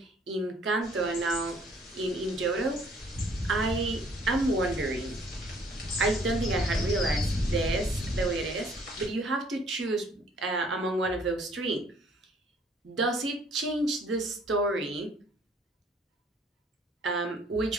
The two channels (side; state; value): both; normal; correlation 0.60